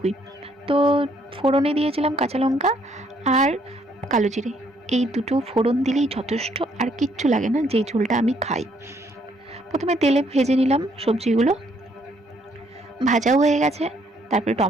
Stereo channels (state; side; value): normal; both; correlation 0.68